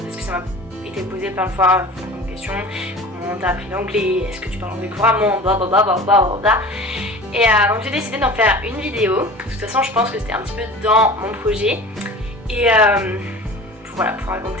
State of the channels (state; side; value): normal; both; correlation 0.38